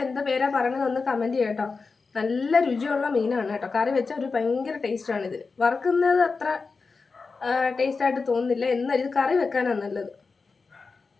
എന്താ പേരാ പറയുന്നത് ഒന്ന് കമൻറ്റ് ചെയ്യാം കേട്ടോ. നല്ല രുചിയുള്ള മീനാണ് കേട്ടോ. കറി വെച്ചാൽ ഒരു ഭയങ്കര ടേസ്റ്റാണ്. ഇതിൽ വറുക്കുന്നത് അത്ര ടേസ്റ്റായിട്ട് തോന്നുന്നില്ല, എന്നാൽ ഇത് കറി വെക്കാനാണ് നല്ലത്.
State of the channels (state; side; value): quieter; right; 4.5 dB